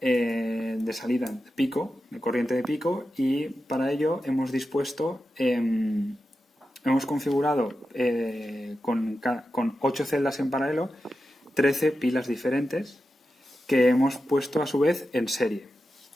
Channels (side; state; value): both; normal; correlation 0.91